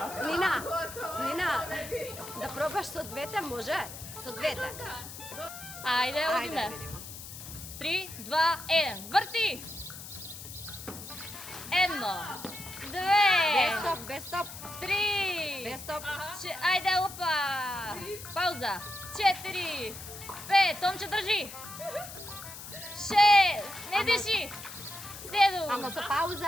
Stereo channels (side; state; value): left; noise; hiss, 12 dB below the sound